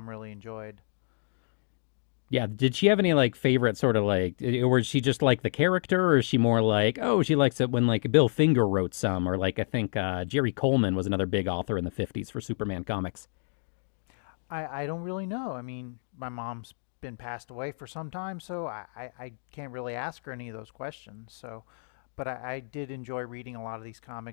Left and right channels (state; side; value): silent; right; digital silence